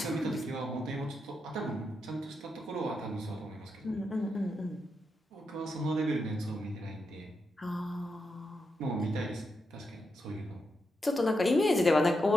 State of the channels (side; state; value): both; normal; correlation 0.84